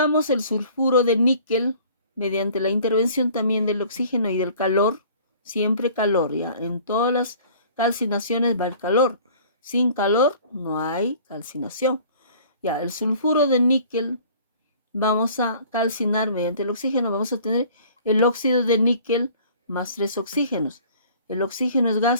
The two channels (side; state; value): both; inverted; correlation -0.50